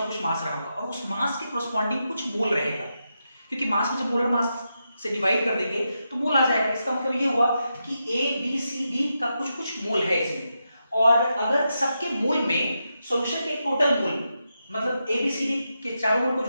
कुछ मास रहा होगा, और उस मास के कोरस्पॉन्डिंग कुछ मोल रहेगा, क्योंकि मास को जब मोलर मास से डिवाइड कर देंगे तो मोल आ जाएगा। इसका मतलब ये हुआ कि ए बी सी डी का कुछ कुछ मोल है इसमें, और अगर सबके मोल में सॉल्यूशन के टोटल मोल मतलब ए बी सी डी के चारों मोल को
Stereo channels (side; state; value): both; inverted; correlation -0.86